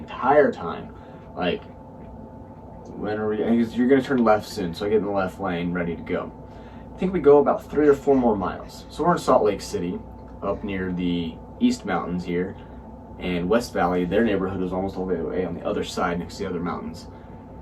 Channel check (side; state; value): both; identical; correlation 1.00